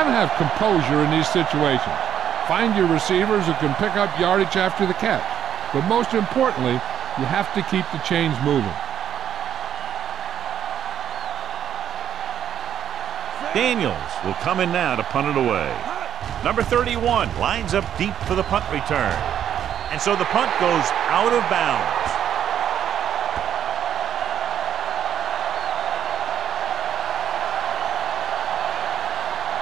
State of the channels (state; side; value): quieter; left; 9.7 dB